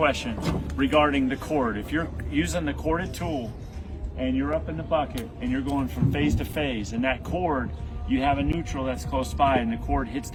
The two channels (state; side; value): identical; both; correlation 1.00